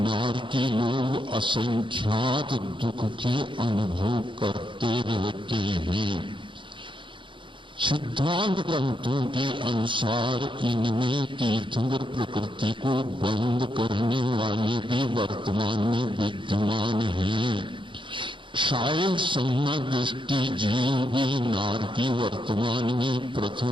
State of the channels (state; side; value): late; left; 0.24 ms